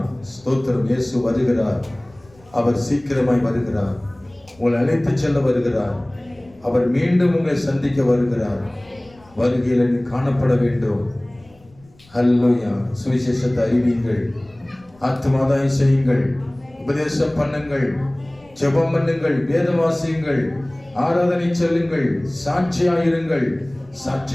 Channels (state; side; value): noise; left; rumble, 28 dB below the sound